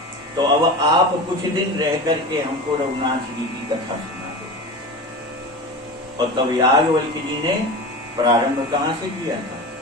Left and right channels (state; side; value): normal; both; correlation 0.29